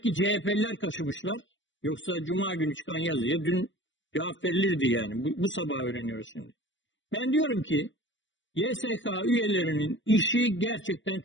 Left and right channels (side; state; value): right; late; 0.54 ms